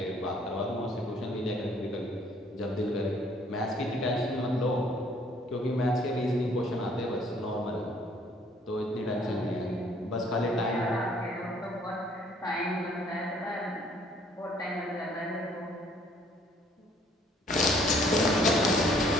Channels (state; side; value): normal; both; correlation 0.61